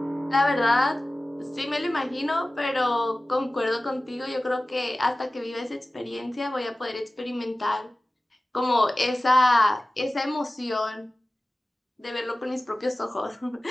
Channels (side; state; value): both; normal; correlation 0.97